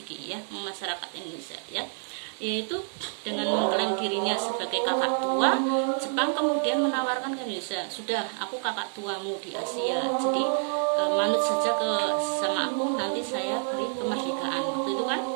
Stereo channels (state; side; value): silent; left; 59 dB below the other